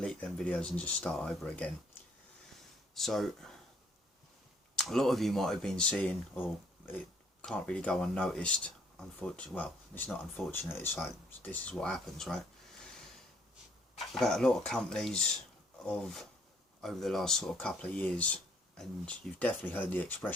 them videos and just start over again. So a lot of you might have been seeing, or it can't really go unnoticed, unfortunately. Well, it's not unfortunate, it's like, this is what happens, right? About a lot of companies of over the last sort of couple of years, and you've definitely heard the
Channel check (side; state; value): both; normal; correlation 0.64